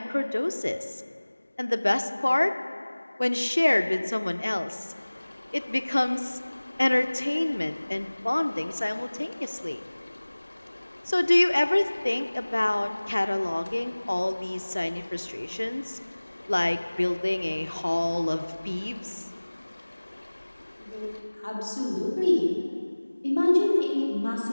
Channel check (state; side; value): inverted; both; correlation -1.00